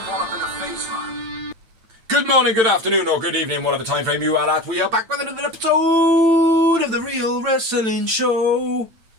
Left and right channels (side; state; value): left; late; 9.0 ms